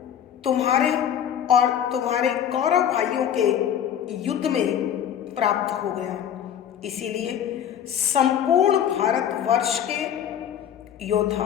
तुम्हारे और तुम्हारे कौरव भाइयों के युद्ध में प्राप्त हो गया। इसीलिए संपूर्ण भारतवर्ष के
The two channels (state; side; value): quieter; right; 9.6 dB